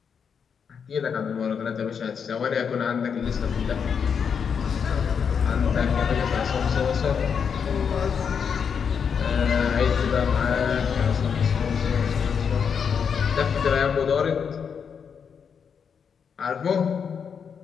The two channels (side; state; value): right; quieter; 6.8 dB